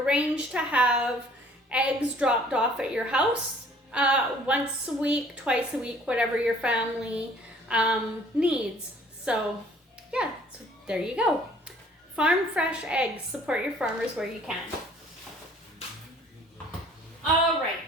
to have eggs dropped off at your house once a week, twice a week, whatever your family needs. So yeah, so there you go. Farm fresh eggs. Support your farmers where you can. All right.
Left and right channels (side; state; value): both; normal; correlation 0.55